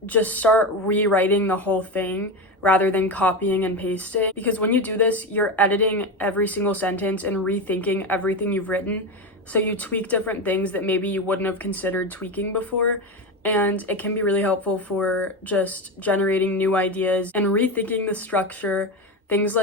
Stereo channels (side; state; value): both; normal; correlation 0.17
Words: just start rewriting the whole thing rather than copying and pasting. Because when you do this, you're editing every single sentence and rethinking everything you've written. So you tweak different things that maybe you wouldn't have considered tweaking before. And it can be really helpful for just generating new ideas and rethinking the structure, things